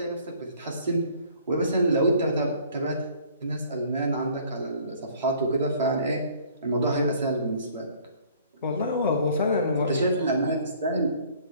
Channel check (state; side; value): inverted; both; correlation -0.55